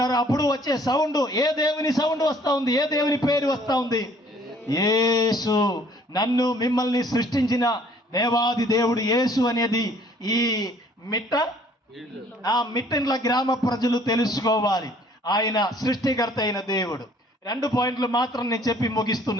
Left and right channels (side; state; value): both; normal; correlation 0.58